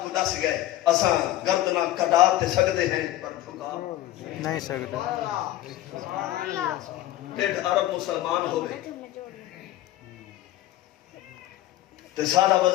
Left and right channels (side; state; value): right; quieter; 14.5 dB